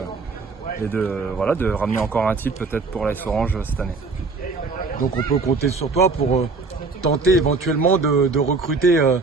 ramener encore un titre peut-être pour l'AS Orange cette année. Donc on peut compter sur toi pour tenter éventuellement de recruter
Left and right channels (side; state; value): left; quieter; 4.0 dB